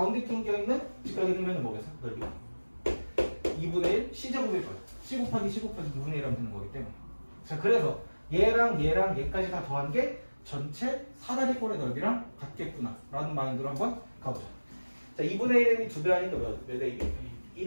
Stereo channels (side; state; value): both; inverted; correlation -1.00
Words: 낑겨있는 직각의 등변은 뭐겠어? 넓이가 2분의 1 C제곱일 거예요. C 곱하기 C 곱하기 2분의 1 하면 되는 거기 때문에. 자, 그래서 얘랑 얘까지 다 더한 게 전체 사다리꼴의 넓이랑 같겠구나 라는 마인드로 한번 가보자. 자, 2분의 1이 2배 하니까 몇 AB? 1